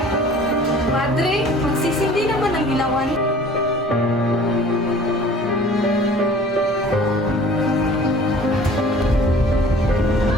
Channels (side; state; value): both; normal; correlation 0.48